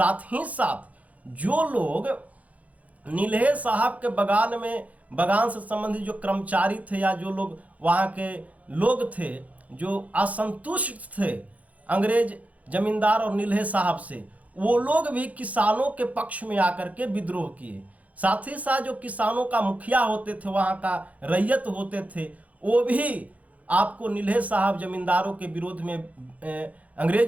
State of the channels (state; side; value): late; left; 0.070 ms